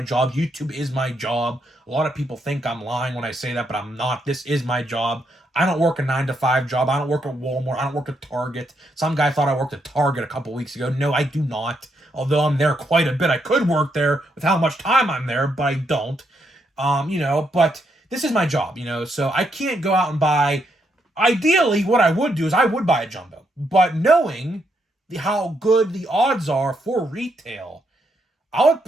job. YouTube is my job. A lot of people think I'm lying when I say that, but I'm not. This is my job. I don't work a 9-to-5 job. I don't work at Walmart. I don't work at Target. Some guy thought I worked at Target a couple weeks ago. No, I do not. Although I'm there quite a bit. I could work there with how much time I'm there, but I don't. But this is my job, so I can't go out and buy. Ideally, what I would do is I would buy a jumbo. But knowing how good the odds are for retail, I would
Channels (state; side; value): normal; both; correlation 0.78